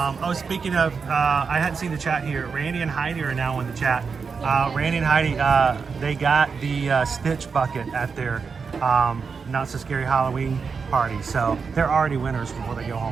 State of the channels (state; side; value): quieter; left; 5.4 dB